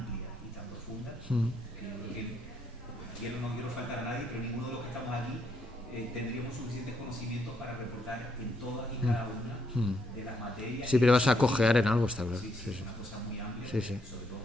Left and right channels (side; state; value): both; normal; correlation 0.74